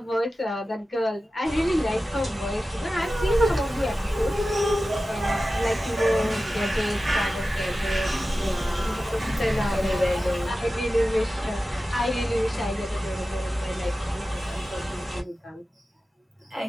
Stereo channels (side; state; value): both; normal; correlation 0.94